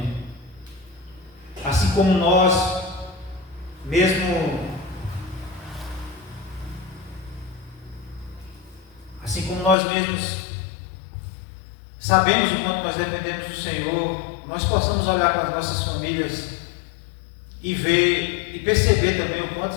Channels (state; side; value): drops out; right; at 9.8 s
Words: assim como nós mesmos sabemos o quanto nós dependemos do Senhor, nós possamos olhar para as nossas famílias e ver e perceber também o quanto